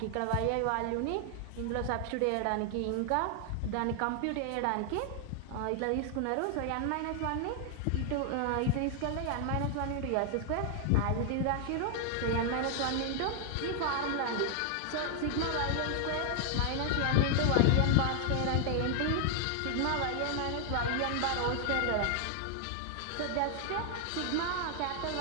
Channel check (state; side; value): different; both; correlation 0.00